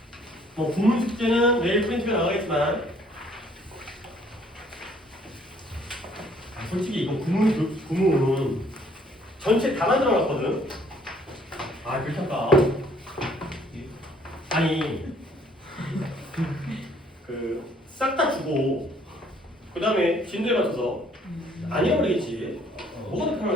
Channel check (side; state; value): both; normal; correlation 0.62